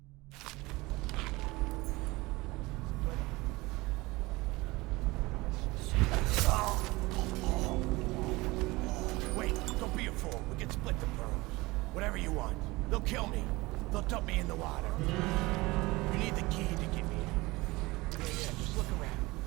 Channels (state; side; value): quieter; left; 21.7 dB